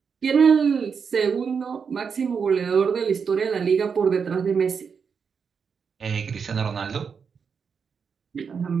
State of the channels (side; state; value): left; quieter; 6.1 dB